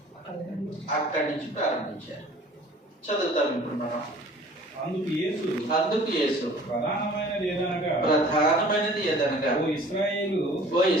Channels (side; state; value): both; normal; correlation 0.49